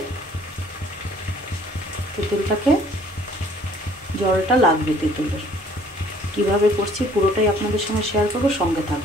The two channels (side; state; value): both; normal; correlation 0.57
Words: তেঁতুলটাকে, জলটা লাগবে তেঁতুলের। কিভাবে করছি পুরোটাই আপনাদের সঙ্গে শেয়ার করব, সঙ্গে